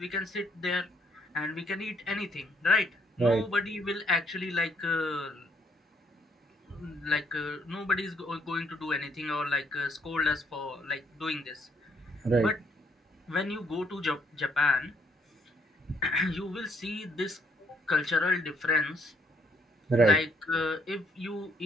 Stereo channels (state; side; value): normal; both; correlation 0.68